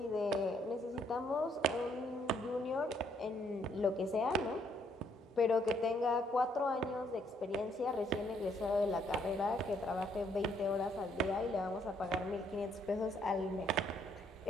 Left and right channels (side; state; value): both; normal; correlation 0.69